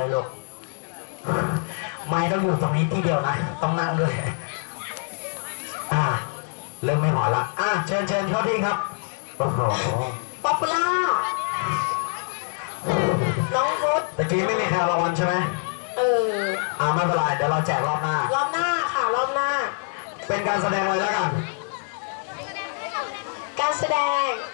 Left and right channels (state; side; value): silent; right; 56 dB below the other